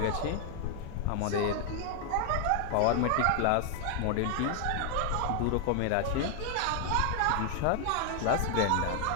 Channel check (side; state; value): both; different; correlation 0.00